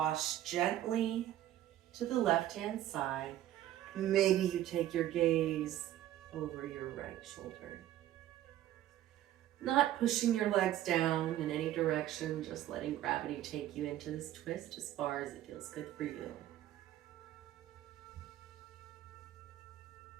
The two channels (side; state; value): left; quieter; 13.1 dB